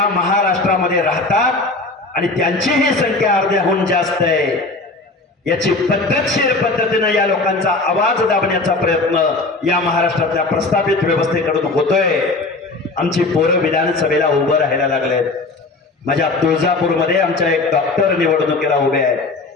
महाराष्ट्रामध्ये राहतात आणि त्यांची ही संख्या अर्ध्याहून जास्त आहे। याची पद्धतशीर पद्धतीने या लोकांचा आवाज दाबण्याचा प्रयत्न या महाराष्ट्रातल्या प्रस्थापित व्यवस्थेकडून होतोय। आमची पोरं विधानसभेला उभं राहायला लागलेत। माझ्या तुळजापूरमध्ये आमच्या एक डॉक्टर निवडणुकीला उभे आहेत।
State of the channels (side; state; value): right; quieter; 3.4 dB